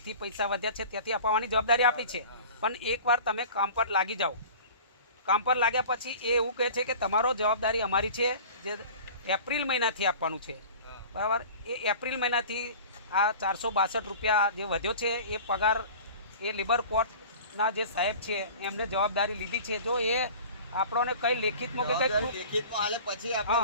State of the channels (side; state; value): both; inverted; correlation -0.41